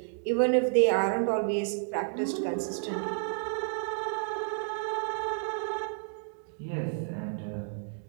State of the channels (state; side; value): silent; left; digital silence